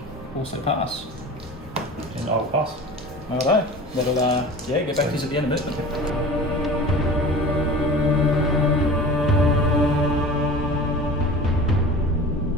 also pass. And I will pass. Alright. That'll, yeah, get back to us at the end of movement.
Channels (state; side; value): normal; both; correlation 0.37